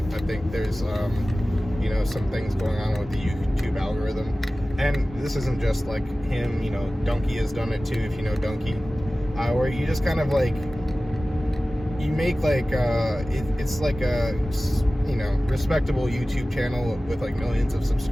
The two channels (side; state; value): both; normal; correlation 0.97